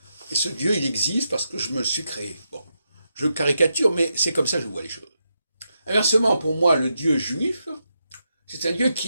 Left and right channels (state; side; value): inverted; both; correlation -0.85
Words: et ce Dieu, il existe parce que je me suis créé. Bon, je caricature, mais c'est comme ça que je vois les choses. Inversement, pour moi, le Dieu juif, c'est un Dieu